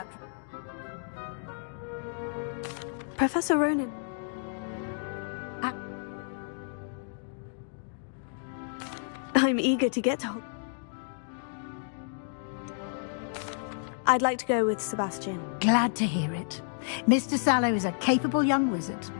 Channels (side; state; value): right; silent; digital silence